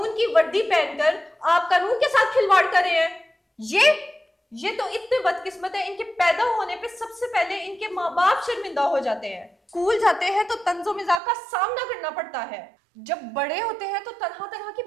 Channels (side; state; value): left; drops out; at 11.2 s